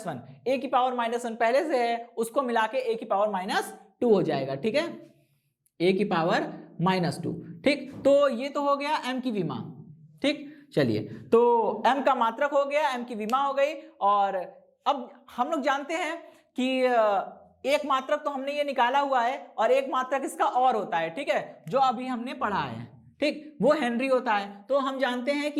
1, A की पावर माइनस 1 पहले से है, उसको मिला के A की पावर माइनस 2 हो जाएगा, ठीक है, A की पावर माइनस 2, ठीक। तो ये तो हो गया M की विमा, ठीक। चलिए, तो M का मात्रक हो गया, M की विमा हो गई, और अब हम लोग जानते हैं कि एक मात्रक तो हमने ये निकाला हुआ है, और एक मात्रक इसका और होता है, ठीक है, जो अभी हमने पढ़ा है, ठीक, वो हेनरी होता है। तो हम जानते हैं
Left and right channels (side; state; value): both; identical; correlation 1.00